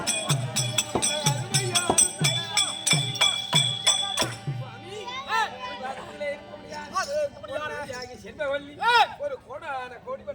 ஒரு கோடான கோடி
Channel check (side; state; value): both; identical; correlation 1.00